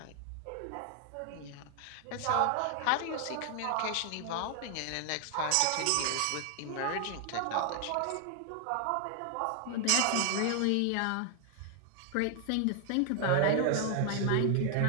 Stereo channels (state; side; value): different; both; correlation 0.00